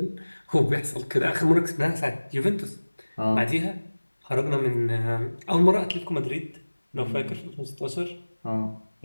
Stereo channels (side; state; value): both; inverted; correlation -1.00